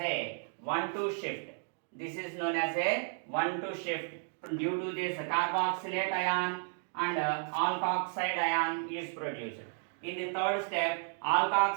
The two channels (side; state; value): left; silent; 56 dB below the other